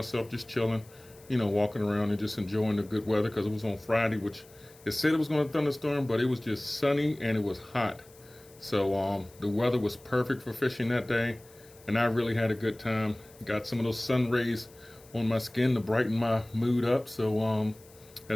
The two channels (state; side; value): noise; left; hiss, 25 dB below the sound